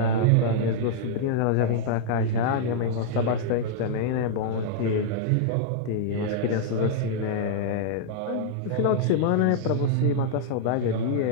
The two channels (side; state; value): both; different; correlation -0.01